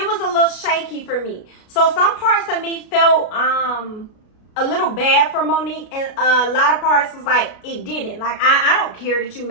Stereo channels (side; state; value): right; late; 33 ms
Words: was a little shaky for me. So some parts of me felt a little bad for Monique, and a lot of parts was like, it didn't. Like, I don't care that you